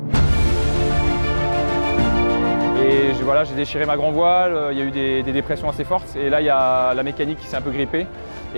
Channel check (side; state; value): both; inverted; correlation -1.00